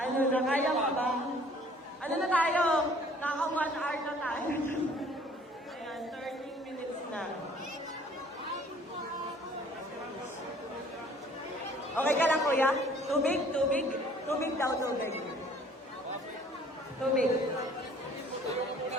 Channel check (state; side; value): normal; both; correlation 0.55